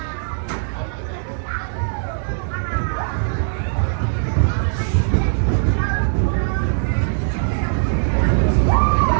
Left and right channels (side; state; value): left; silent; 66 dB below the other